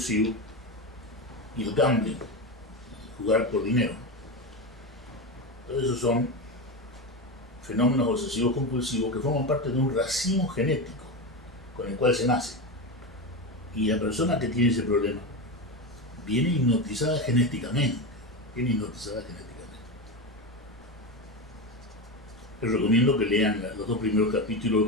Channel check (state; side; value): normal; both; correlation 0.18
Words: y el gambling, jugar por dinero. Todos esos son fenómenos obsesivos compulsivos que forman parte de un racimo genético con el cual se nace. Y la persona que tiene ese problema viene hipnotizada genéticamente. Les recomiendo que lean los 2 primeros capítulos